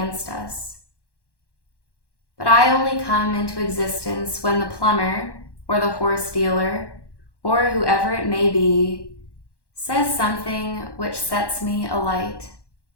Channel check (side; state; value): right; late; 1.1 ms